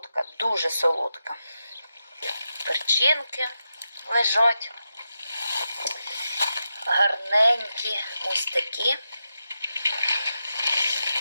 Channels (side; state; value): both; inverted; correlation -0.88